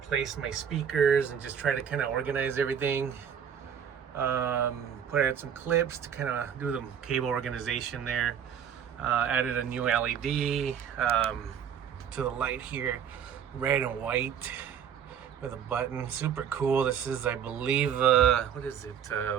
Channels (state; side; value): quieter; left; 8.4 dB